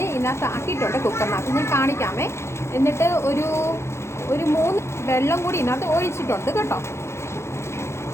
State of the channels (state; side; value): late; right; 0.13 ms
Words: ഇതിനകത്ത് ആക്കിയിട്ടുണ്ട് കുക്കറിനകത്ത്. ഞാൻ കാണിക്കാമേ. എന്നിട്ട് ഒരു 3 വെള്ളം കൂടി ഇതിനകത്ത് ഒഴിച്ചിട്ടുണ്ട് കേട്ടോ.